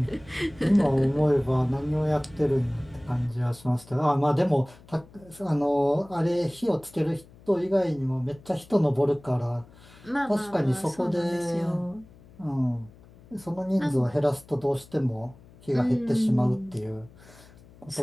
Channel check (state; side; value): noise; left; hum, 24 dB below the sound